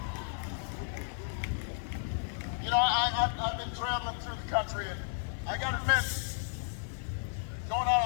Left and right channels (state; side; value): silent; right; digital silence